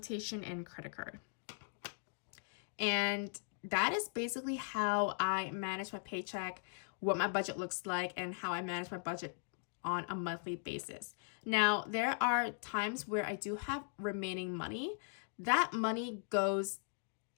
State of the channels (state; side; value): silent; right; digital silence